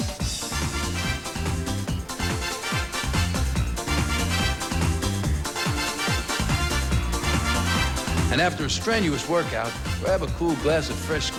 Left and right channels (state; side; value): identical; both; correlation 1.00